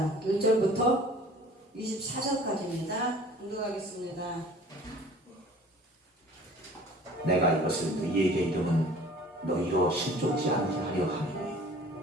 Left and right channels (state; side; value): normal; both; correlation 0.48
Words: 1절부터 24절까지입니다. 공독하겠습니다. 내가 이것을 너희에게 이름은 너희로 실족지 않게 하려 함이니